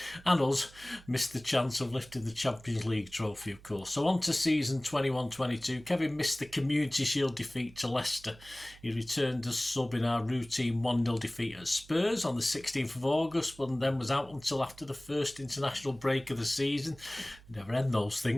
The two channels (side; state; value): right; noise; hum, 22 dB below the sound